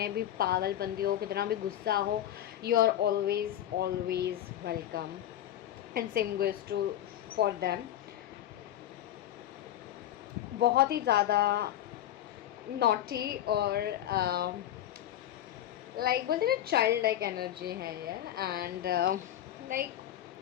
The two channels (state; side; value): quieter; right; 12.2 dB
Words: भी पागलपंती हो, कितना भी गुस्सा हो, you are always welcome, and same goes to for them. बहुत ही ज़्यादा नॉटी और लाइक बोलते ना चाइल्ड लाइक एनर्जी है ये, and like